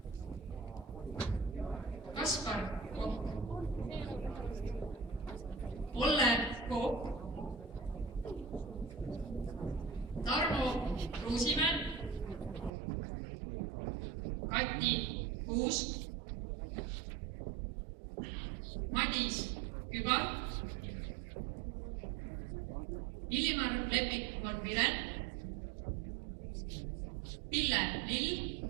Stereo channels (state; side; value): drops out; left; at 12.7 s